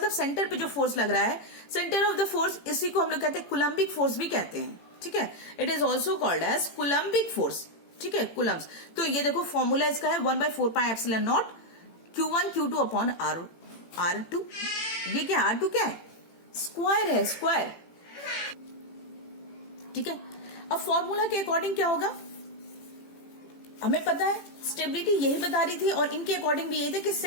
सेंटर पे जो फोर्स लग रहा है, सेंटर ऑफ द फोर्स, इसी को हम लोग कहते हैं कूलम्बिक फोर्स भी कहते हैं. ठीक है, it is also called as coulombic force. ठीक है, कूलम्स। तो ये देखो फॉर्मूला इसका है 1/4 pi epsilon not Q1 Q2 upon R2। ये क्या R2 क्या है? स्क्वायर है, स्क्वायर। ठीक है, अब फॉर्मूला के अकॉर्डिंग क्या होगा हमें पता है, स्टेबिलिटी यही बता रही थी और इनके अकॉर्डिंग भी यही था कि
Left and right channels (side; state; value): right; late; 18 ms